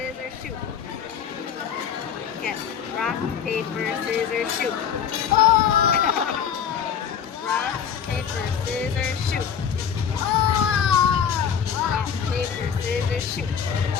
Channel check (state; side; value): quieter; right; 7.9 dB